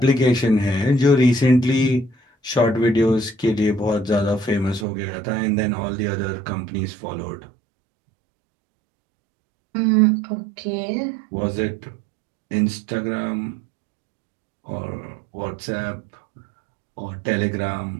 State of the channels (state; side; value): drops out; left; at 4.9 s